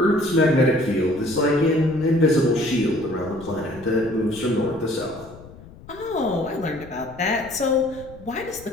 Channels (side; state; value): left; noise; rumble, 20 dB below the sound